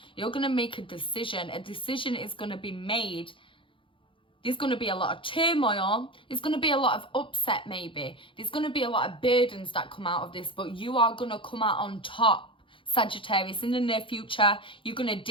You're going to make a decision. A decision is going to be made. There's going to be a lot of turmoil. There's going to be a lot of upset maybe. There's going to be a lot of burdens that come out of this, but you are going to come out on top, Sagittarius. In the near future, you're going to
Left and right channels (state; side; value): late; right; 0.25 ms